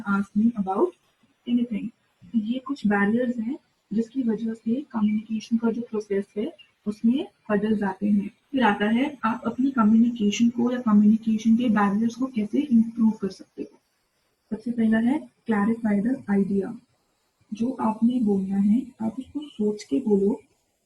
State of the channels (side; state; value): both; identical; correlation 1.00